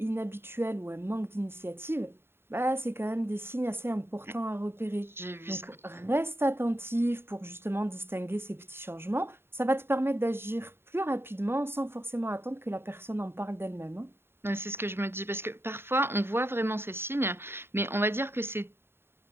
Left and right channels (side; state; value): left; late; 0.11 ms